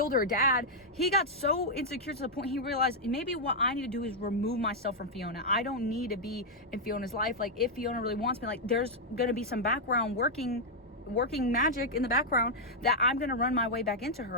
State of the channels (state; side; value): normal; both; correlation -0.03